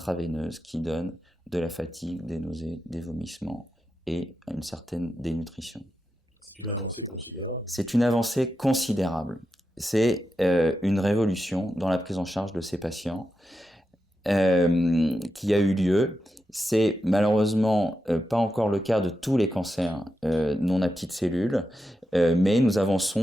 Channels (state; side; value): normal; both; correlation 0.88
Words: qui donne de la fatigue, des nausées, des vomissements et une certaine dénutrition. C'est une avancée considérable. C'est une avancée considérable. C'est une révolution dans la prise en charge de ces patients qui a eu lieu. C'est malheureusement pas encore le cas de tous les cancers non à petites cellules, mais nous